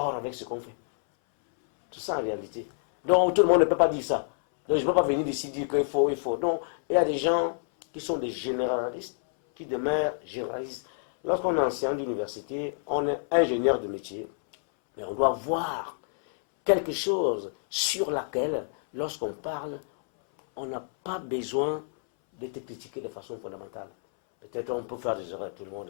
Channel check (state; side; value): silent; right; 59 dB below the other